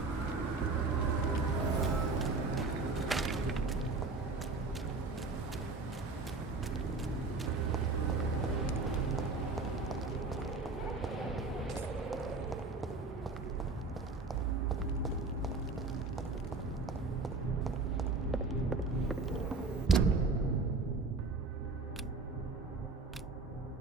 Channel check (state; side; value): quieter; left; 3.7 dB